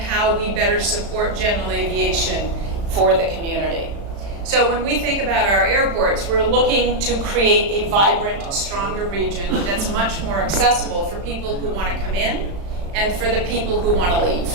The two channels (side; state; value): left; late; 35 ms